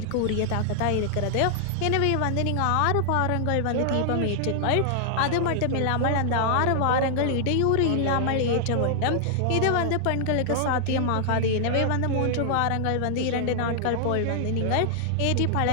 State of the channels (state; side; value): different; both; correlation -0.01